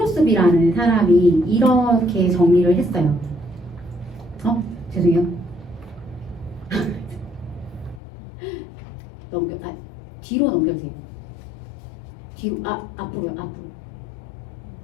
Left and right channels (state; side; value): drops out; right; at 8.0 s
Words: 사람이 이렇게 정리를 했어요. 죄송해요. 뒤로 넘겨주세요. 뒤로, 앞으로요, 앞으로.